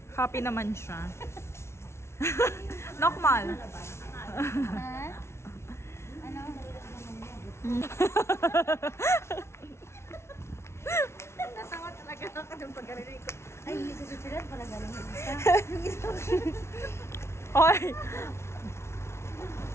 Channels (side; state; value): right; late; 0.13 ms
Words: Happy naman siya. Normal. Ha? Ano? Natawa talaga ako ng pagkarinig ko. Ay, hindi sa susunod pala galing yung isa. Hoy!